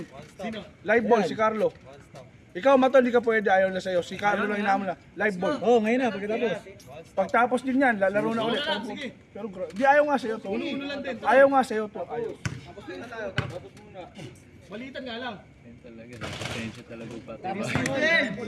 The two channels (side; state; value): both; identical; correlation 1.00